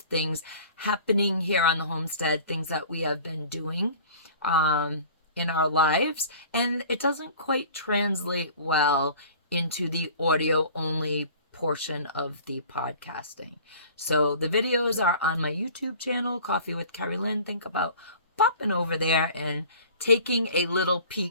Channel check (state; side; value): inverted; both; correlation -0.46